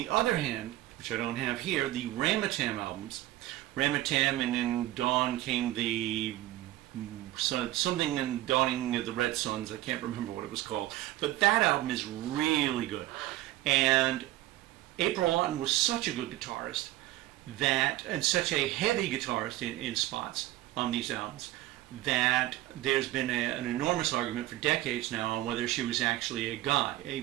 other hand, which I don't have here, the Ramatam albums, Ramatam, and in Dawn came the something in Dawning of the Red Suns. I can't remember what it was called, but that album is really good. And April Lawton was such a good guitarist and such a heavy guitarist in spots on these albums, that there's been an enormous argument for decades now on whether she was actually a guy, a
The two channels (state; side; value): quieter; left; 16.0 dB